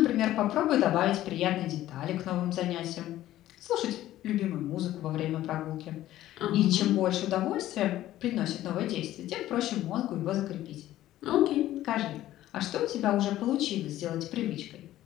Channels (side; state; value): right; quieter; 14.1 dB